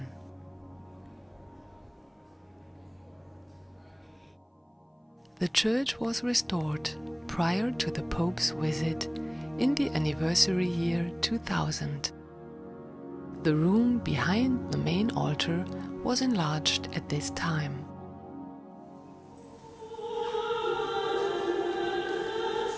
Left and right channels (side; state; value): both; identical; correlation 1.00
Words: The church was restored prior to the Pope's visit in the anniversary year 2000. The room behind the main altar was enlarged at this time.